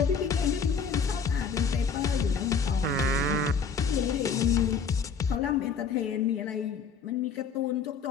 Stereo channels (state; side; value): quieter; right; 5.6 dB